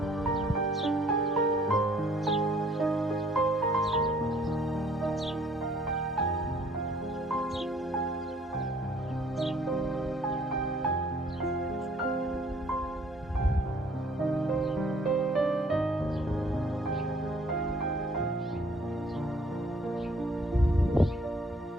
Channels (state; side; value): normal; both; correlation 0.59